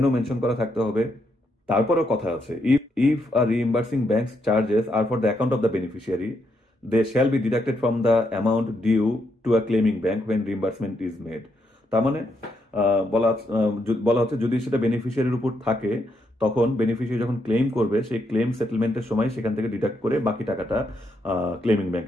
মেনশন করা থাকতে হবে। তারপরেও কথা আছে, if a reimbursing bank's charges are for the account of the beneficiary, they shall be deducted from the amount due to a claiming bank when reimbursement is made. তার মানে বলা হচ্ছে যদি সেটা বেনিফিশিয়ারির উপর থাকে, তখন বেনিফিশিয়ারি যখন ক্লেম করবে সেই ক্লেম সেটেলমেন্টের সময় সেখান থেকে ডিডাক্ট করে বাকি টাকাটা ক্লেমিং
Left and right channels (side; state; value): both; normal; correlation 0.78